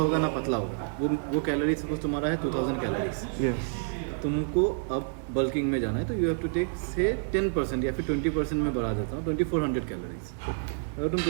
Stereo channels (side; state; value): left; silent; digital silence